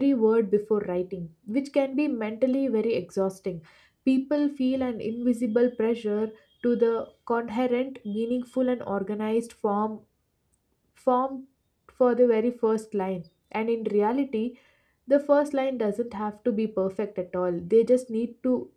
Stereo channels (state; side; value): identical; both; correlation 1.00